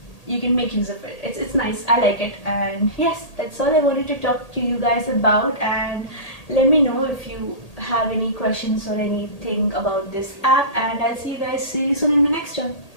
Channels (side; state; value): right; late; 1.8 ms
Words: You can make use of it. It's nice. I like it. And yes, that's all I wanted to talk to you guys about. And let me know if you have any questions or anything about this app, and I'll see you guys soon in the next one.